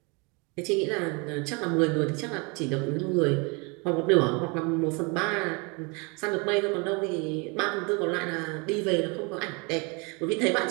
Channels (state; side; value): quieter; left; 30.3 dB